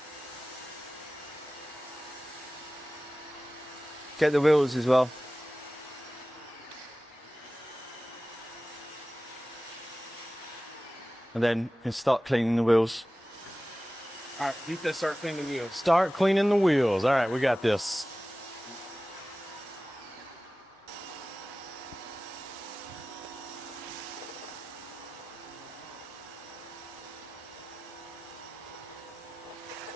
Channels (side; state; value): both; normal; correlation 0.96